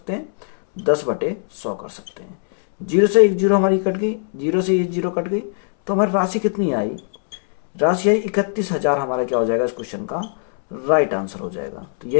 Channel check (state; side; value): silent; right; 66 dB below the other